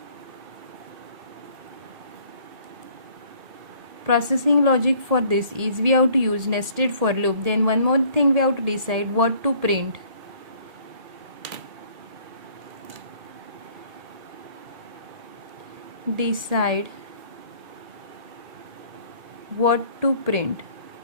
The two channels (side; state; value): left; late; 1.8 ms